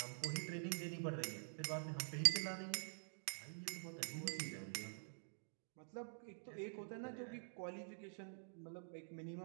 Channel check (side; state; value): left; silent; digital silence